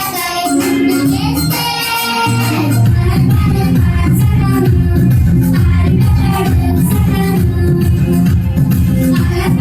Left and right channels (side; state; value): both; identical; correlation 1.00